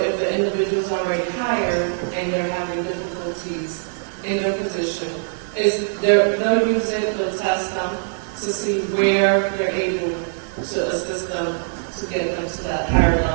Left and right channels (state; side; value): silent; left; digital silence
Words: the individual is already hired and they're having difficulties in their position, they'll use it, they'll test them to see where they're able to assist them to get them to that higher